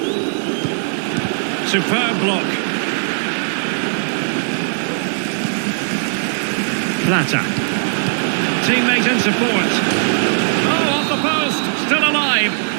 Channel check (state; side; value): silent; left; digital silence